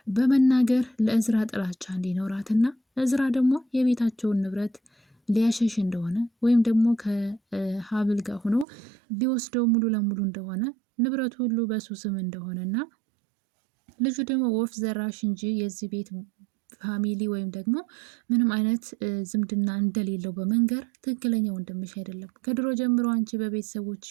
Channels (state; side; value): drops out; left; at 8.7 s